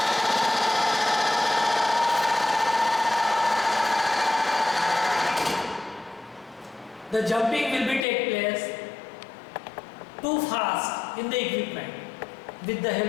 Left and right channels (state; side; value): drops out; right; at 8.1 s